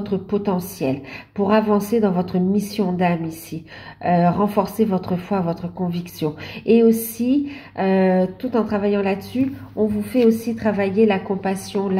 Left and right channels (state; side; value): identical; both; correlation 1.00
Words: potentiel, pour avancer dans votre mission d'âme ici, renforcer votre foi, votre conviction. Et aussi, tout en travaillant là-dessus, on vous fait aussi travailler la compassion,